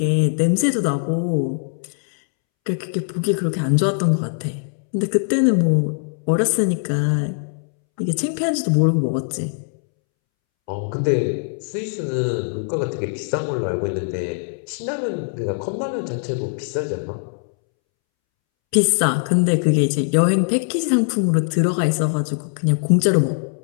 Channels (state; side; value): silent; right; 65 dB below the other